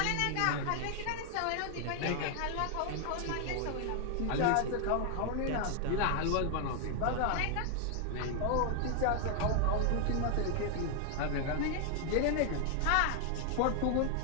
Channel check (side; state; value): both; different; correlation 0.00